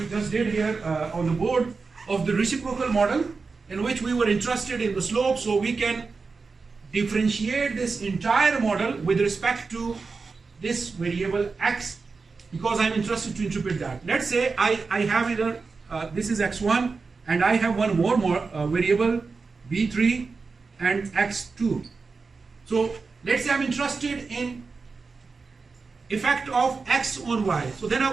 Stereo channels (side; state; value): left; quieter; 4.5 dB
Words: just did here on the board of the reciprocal model, in which we were interested in the slope, so we can differentiate this entire model with respect to this variable x, because I'm interested to interpret that. Let's say I have either, this is x1, and I have one more variable, b3 and x2. So let's say I'm interested in effect of x on y. So then I